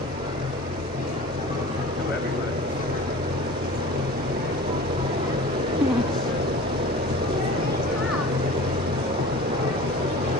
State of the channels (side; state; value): both; normal; correlation 0.39